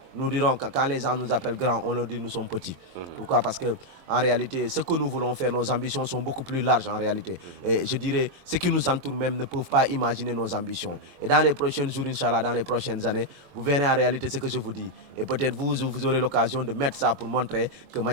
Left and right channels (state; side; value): late; left; 23 ms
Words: nous dirons que quand les gens nous appellent grands, on leur dit que nous sommes petits. Pourquoi? Parce que en réalité, ce que nous voulons faire, nos ambitions sont beaucoup plus larges en réalité. Et je dirais, ceux qui nous entourent même ne peuvent pas imaginer nos ambitions. Et dans les prochains jours, Inch'Allah, dans les prochaines années, vous verrez en réalité ce que je vous dis. Et peut-être vous aurez l'occasion de mettre ça pour montrer que